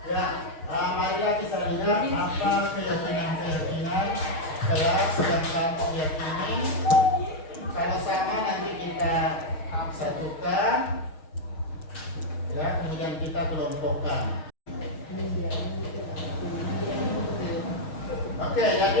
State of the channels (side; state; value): right; late; 6.4 ms